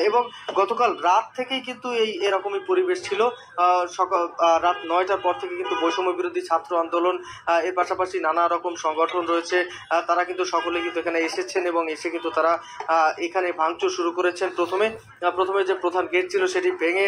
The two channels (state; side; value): identical; both; correlation 1.00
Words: এবং গতকাল রাত থেকেই কিন্তু এরকমই পরিবেশ ছিল। সকাল রাত 9টার পর থেকে কিন্তু বৈষম্য বিরোধী ছাত্র আন্দোলন, এর পাশাপাশি নানা রকম সংগঠন রয়েছে, তারা কিন্তু সকলে কিন্তু এখানে এসেছেন এবং এসে কিন্তু তারা এখানে ভাঙচুর শুরু করেছেন। প্রথমে যে প্রধান গেট ছিল সেটি ভেঙে